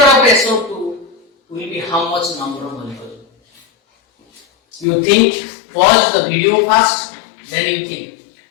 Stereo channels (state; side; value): drops out; right; at 4.9 s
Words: of SO2 will be how much number of molecules? You think, pause the video first, then you think.